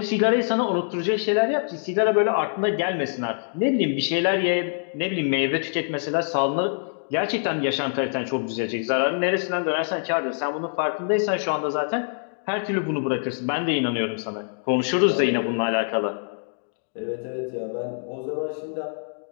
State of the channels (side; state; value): right; silent; digital silence